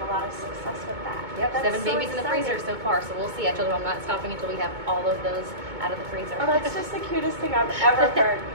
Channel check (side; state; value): left; late; 2.2 ms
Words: a lot of success with that. Yep, that's 7 babies in the freezer so far, so we'll see. I told them I'm not stopping until we have all of those out of the freezer. Oh, that's just the cutest thing I've ever heard.